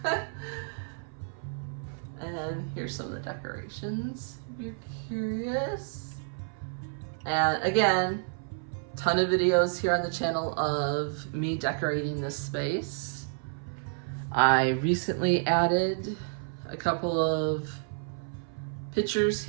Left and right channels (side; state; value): left; silent; 56 dB below the other